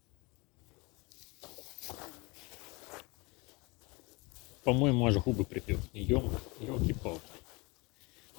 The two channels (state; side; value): quieter; right; 26.3 dB